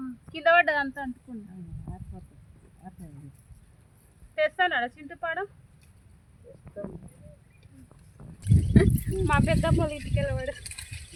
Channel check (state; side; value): identical; both; correlation 1.00